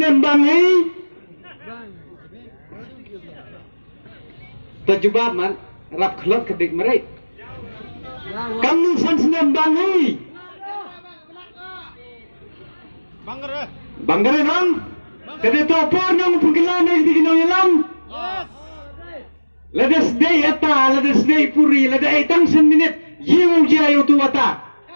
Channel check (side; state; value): both; inverted; correlation -1.00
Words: bangai tajubab man rap khlot kedik merai kamnung san snem bangai bangare nang kade to por nang pungkilan di kinong yalam Ladas day ata, ladas day puri, lada ay tangsan minit, yung jayo tuwata.